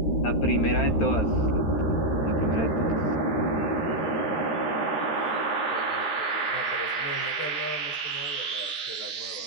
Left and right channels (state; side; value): late; right; 13 ms